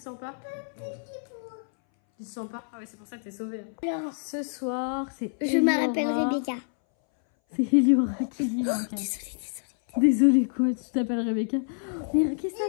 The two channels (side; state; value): right; silent; 60 dB below the other